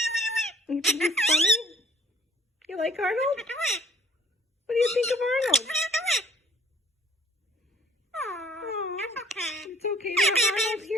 You think he's funny? You like Arnold? What do you think of Arnold? It's okay to have Arnold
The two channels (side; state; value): both; normal; correlation 0.57